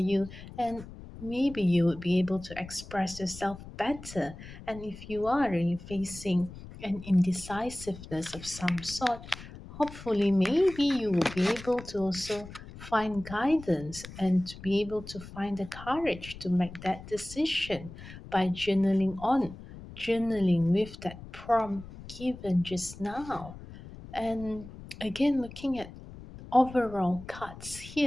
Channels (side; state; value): left; noise; rumble, 15 dB below the sound